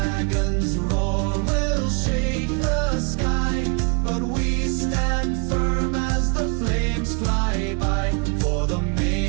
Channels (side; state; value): left; quieter; 33.3 dB